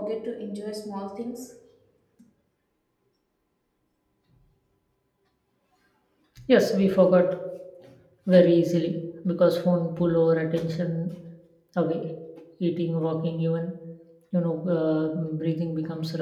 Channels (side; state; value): both; identical; correlation 1.00